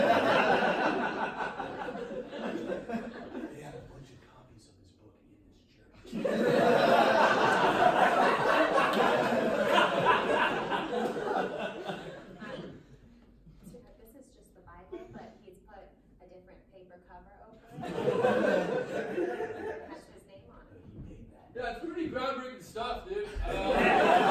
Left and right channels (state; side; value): identical; both; correlation 1.00